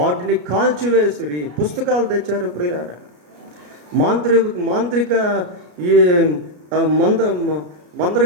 కాల్చివేసిరి. పుస్తకాలు తెచ్చారు ప్రియులారా. మాంత్రిక ఈ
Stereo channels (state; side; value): late; left; 33 ms